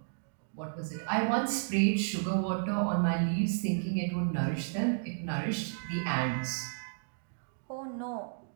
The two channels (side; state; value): left; silent; digital silence